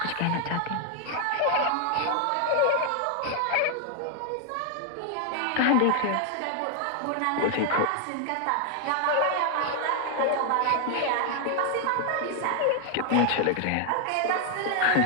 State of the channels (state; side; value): different; both; correlation 0.00